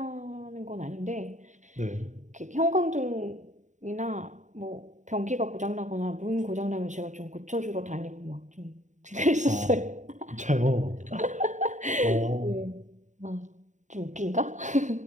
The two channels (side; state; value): left; late; 0.35 ms